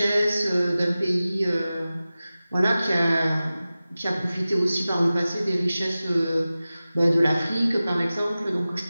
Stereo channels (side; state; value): both; inverted; correlation -0.96